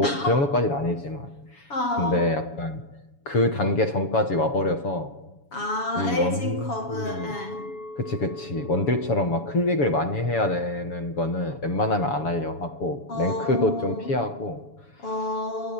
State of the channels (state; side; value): late; right; 7.1 ms